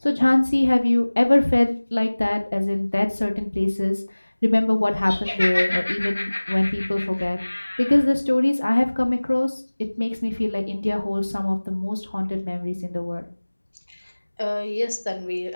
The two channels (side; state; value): both; inverted; correlation -1.00